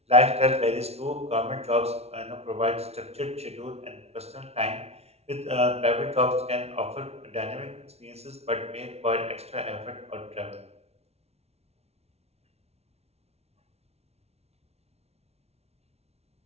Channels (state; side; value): late; left; 0.31 ms